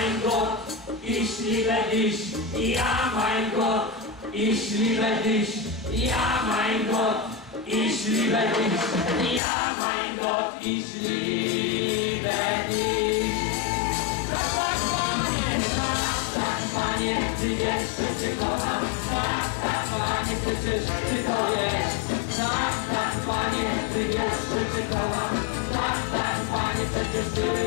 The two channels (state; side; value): drops out; right; at 9.4 s